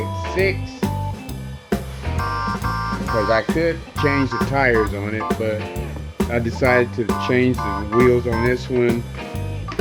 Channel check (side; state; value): both; identical; correlation 1.00